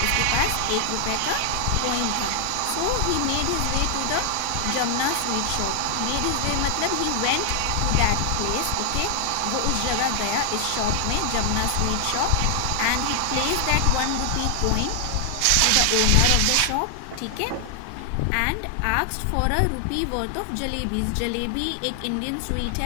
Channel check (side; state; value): both; different; correlation 0.00